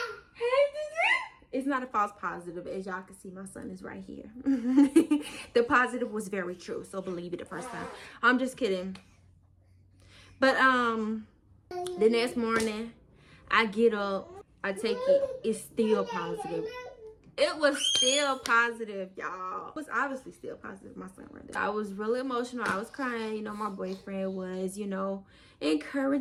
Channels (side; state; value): both; identical; correlation 1.00